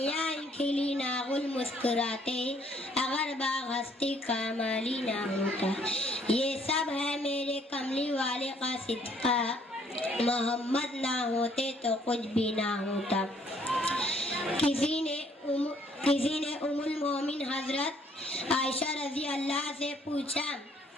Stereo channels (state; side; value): normal; both; correlation 0.64